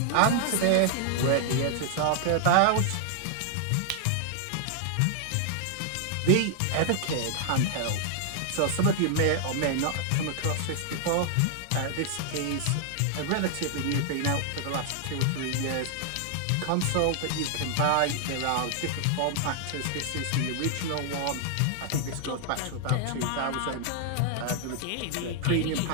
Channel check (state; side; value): different; both; correlation 0.00